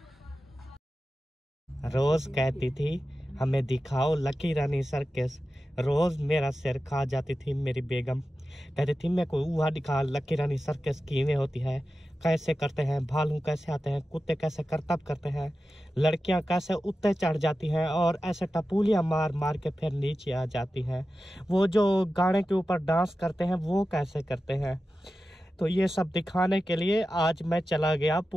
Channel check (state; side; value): normal; both; correlation 0.93